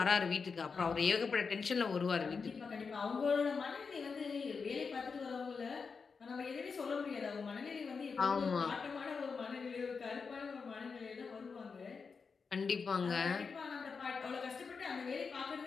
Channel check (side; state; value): right; quieter; 5.2 dB